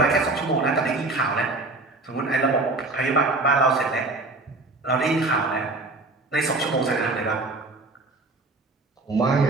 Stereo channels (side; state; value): left; quieter; 3.2 dB